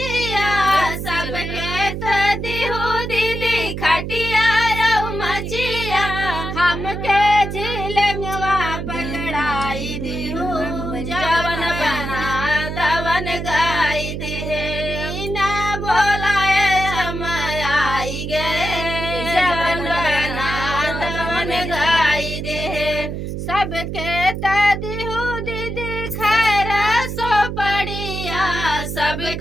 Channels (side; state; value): right; noise; hum, 5 dB below the sound